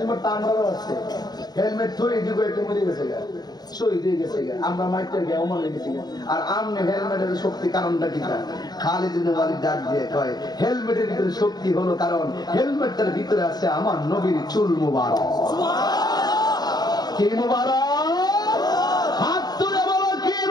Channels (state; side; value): late; right; 0.20 ms